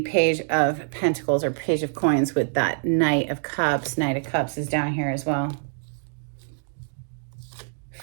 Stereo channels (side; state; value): left; silent; digital silence